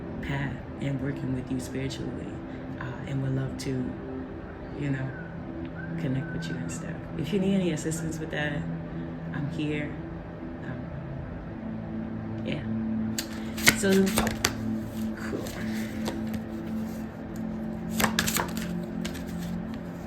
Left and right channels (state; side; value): identical; both; correlation 1.00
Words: path and working with you spiritually, and would love to, connect with you and stuff. If you need any assistance with that, I'm here. Yeah. So, cool.